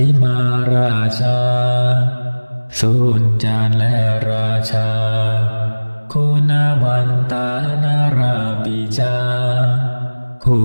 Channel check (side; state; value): both; inverted; correlation -1.00